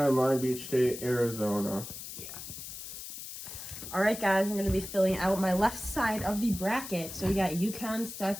and Long Beach State, Arizona. Yeah. All right, guys, I'm going to be filling out my left side of the bracket. So we got UConn,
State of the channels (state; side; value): noise; left; hiss, 10 dB below the sound